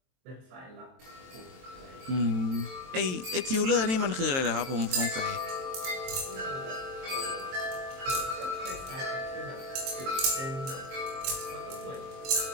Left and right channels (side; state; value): left; late; 23 ms